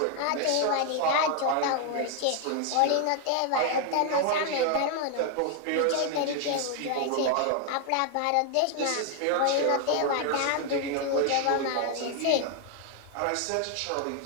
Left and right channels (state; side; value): different; both; correlation 0.01